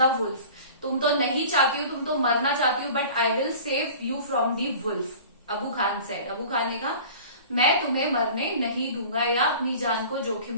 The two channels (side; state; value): both; inverted; correlation -0.42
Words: wolf, तुम तो नहीं चाहती हो, तुम तो मरना चाहती हो, but I will save you from the wolf. Abu Khan said, Abu Khan ने कहा मैं तुम्हें मरने नहीं दूंगा या अपनी जान को जोखिम